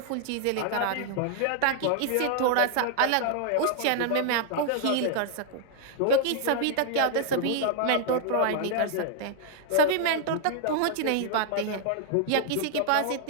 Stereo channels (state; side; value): different; both; correlation 0.00